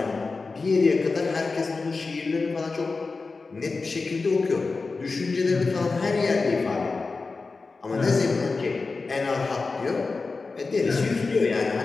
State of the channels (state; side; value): quieter; right; 4.0 dB